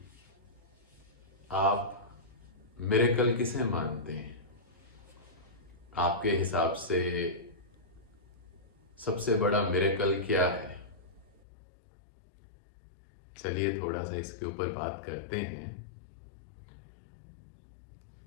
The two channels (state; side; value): drops out; right; at 11.4 s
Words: आप मिरेकल किसे मानते हैं। आपके हिसाब से सबसे बड़ा मिरेकल क्या है। चलिए थोड़ा सा इसके ऊपर बात करते हैं।